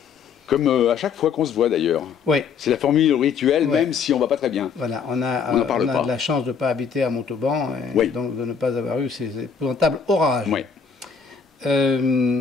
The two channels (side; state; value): right; quieter; 6.2 dB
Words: Comme à chaque fois qu'on se voit d'ailleurs. Oui. C'est la formule rituelle, Oui. même si on ne va pas très bien. Voilà, on a pas. de la chance de ne pas habiter à Montauban, et Oui. donc de ne pas avoir eu ces épouvantables orages. Oui.